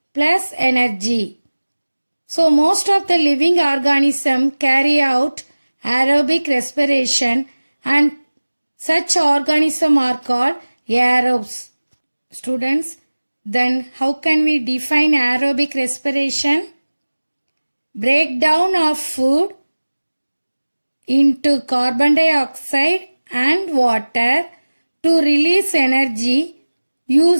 plus energy. So most of the living organisms carry out aerobic respiration, and such organisms are called aerobes. Students, then how can we define aerobic respiration? Breakdown of food into carbon dioxide and water to release energy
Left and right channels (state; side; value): inverted; both; correlation -1.00